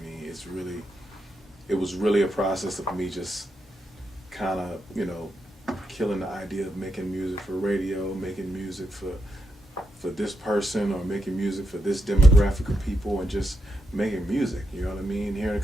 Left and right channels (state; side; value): normal; both; correlation 0.83